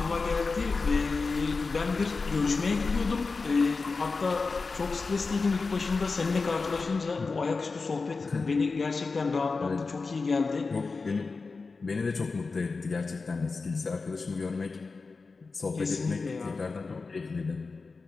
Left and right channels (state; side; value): quieter; right; 4.2 dB